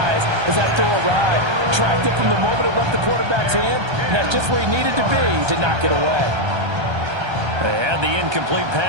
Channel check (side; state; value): left; late; 1.3 ms